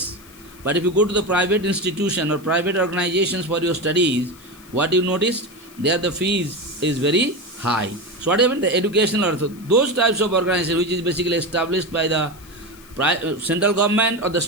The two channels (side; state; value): left; noise; hiss, 23 dB below the sound